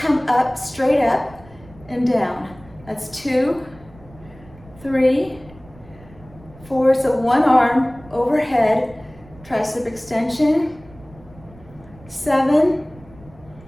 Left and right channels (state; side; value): noise; right; rumble, 22 dB below the sound